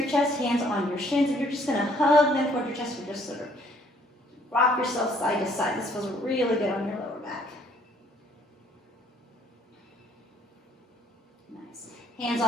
chest, hands on your shins, and you're just going to hug them toward your chest. Or just sort of rock yourself side to side. This feels really good on your lower back. Hands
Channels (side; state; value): both; normal; correlation 0.63